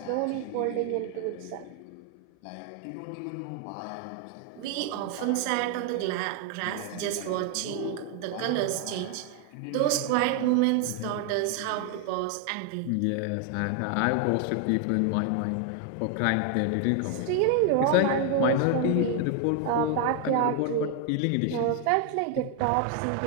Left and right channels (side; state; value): both; different; correlation 0.00